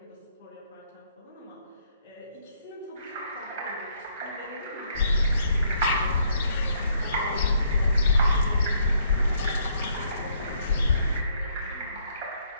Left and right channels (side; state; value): both; inverted; correlation -0.68